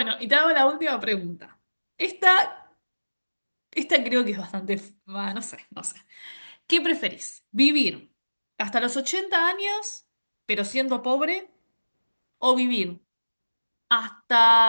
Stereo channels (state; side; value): inverted; both; correlation -1.00